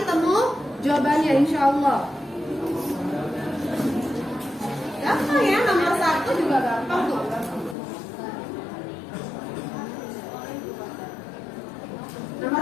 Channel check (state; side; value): drops out; right; at 7.8 s